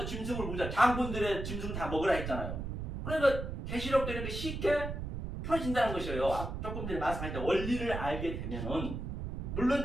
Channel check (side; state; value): right; noise; rumble, 5 dB below the sound